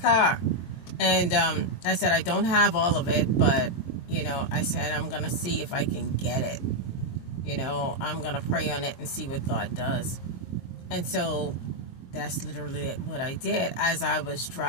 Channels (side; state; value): right; late; 23 ms